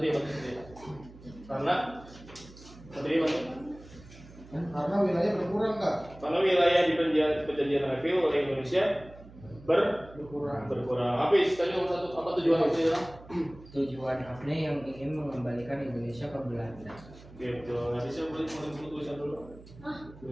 Karena Satria bantu. Karena wilayah berkurang Kak. Karena wilayah di perjanjian Redfield oleh Indonesia Berkurang. berkurang. Apa tadi nomor satu? Apa tujuan apa ya? Tujuan AFNE yang ingin mengembalikan Indonesia ke Belanda. Gitu. Nanti saya boleh buku tulisan dulu. Hah?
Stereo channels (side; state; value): right; noise; hum, 20 dB below the sound